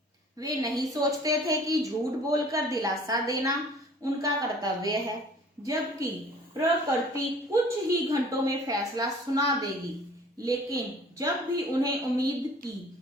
वे नहीं सोचते थे कि झूठ बोलकर दिलासा देना उनका कर्तव्य है, जबकि प्रकृति कुछ ही घंटों में फैसला सुना देगी। लेकिन जब भी उन्हें उम्मीद की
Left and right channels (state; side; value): normal; both; correlation 0.50